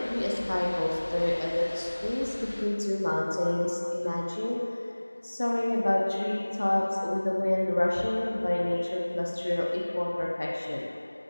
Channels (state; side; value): inverted; both; correlation -1.00